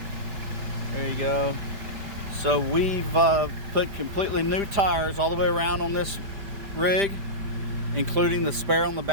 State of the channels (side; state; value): left; late; 5.0 ms